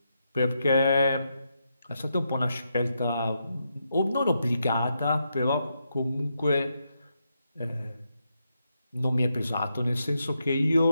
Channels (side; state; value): both; inverted; correlation -0.83